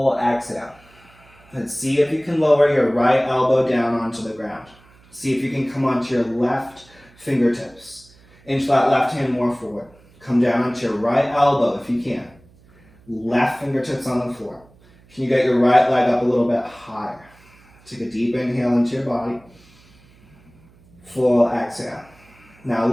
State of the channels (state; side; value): noise; right; hum, 28 dB below the sound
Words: exhale. And see if you can lower your right elbow down onto the ground. See if you can come onto your left fingertips. Inch that left hand more forward. Come down onto your right elbow if you can. Left fingertips on the floor. Can you get your right leg up a little bit higher? Take a deep inhale into your body. Full exhale. Now